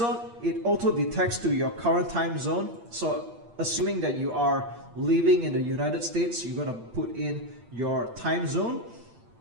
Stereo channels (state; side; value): late; left; 8.8 ms